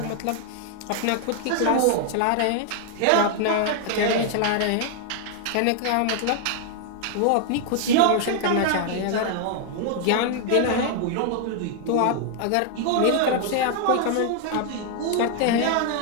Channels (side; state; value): both; different; correlation 0.00